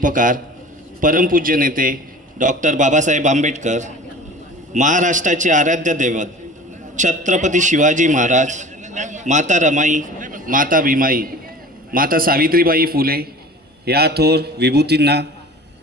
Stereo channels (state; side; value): normal; both; correlation 0.41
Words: परमपूज्य नेते डॉक्टर बाबासाहेब आंबेडकर, महाराष्ट्राचे आराध्य दैवत छत्रपती शिवाजी महाराज, माता रमाई, माता भीमाई, माता सावित्रीबाई फुले या थोर विभूतींना